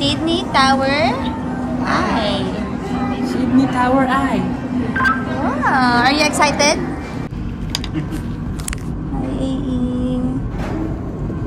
Tower Eye. Sydney Tower Eye. Wow! Are you excited? Hi, AE!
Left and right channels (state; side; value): identical; both; correlation 1.00